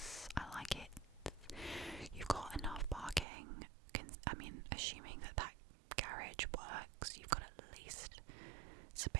I like it. You've got enough parking. I mean, assuming that garage works, you've got at least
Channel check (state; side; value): drops out; left; at 3.2 s